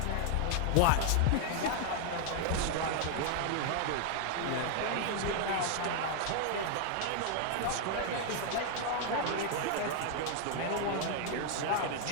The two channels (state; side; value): different; both; correlation 0.00